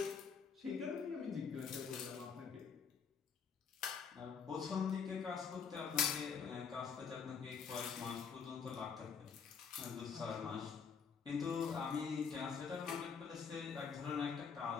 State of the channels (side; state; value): right; quieter; 6.1 dB